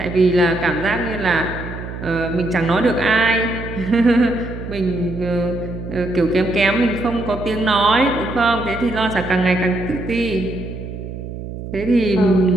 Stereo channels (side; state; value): right; noise; hum, 9 dB below the sound